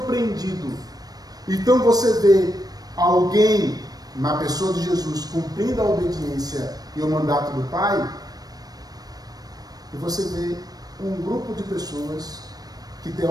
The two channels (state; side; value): late; left; 0.19 ms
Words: Então você vê alguém, na pessoa de Jesus, cumprindo a obediência e o mandato do Pai, e você vê um grupo de pessoas que